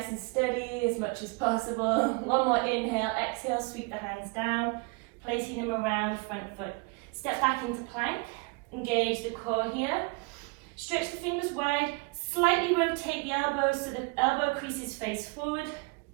and steady as much as possible. One more inhale, exhale, sweep the hands down, placing them around front foot. Step back into plank, engage the core here. Stretch the fingers wide, slightly rotate the elbows so the elbow creases face forward.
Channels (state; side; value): quieter; left; 28.6 dB